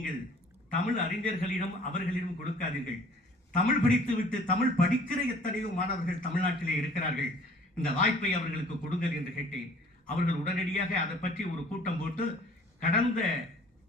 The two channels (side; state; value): both; normal; correlation 0.52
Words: தமிழ் அறிஞர்களிடம் அவர்களிடம் கொடுக்காதீர்கள். தமிழ் படித்துவிட்டு தமிழ் படிக்கிற எத்தனையோ மாணவர்கள் தமிழ்நாட்டிலே இருக்கிறார்கள். இந்த வாய்ப்பை அவர்களுக்கு கொடுங்கள் என்று கேட்டேன். அவர்கள் உடனடியாக அதை பற்றி ஒரு கூட்டம் போட்டு கடந்த